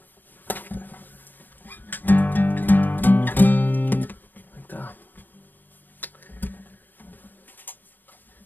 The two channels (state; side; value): late; right; 0.089 ms